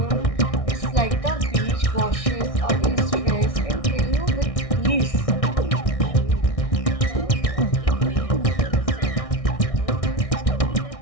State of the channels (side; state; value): right; late; 1.6 ms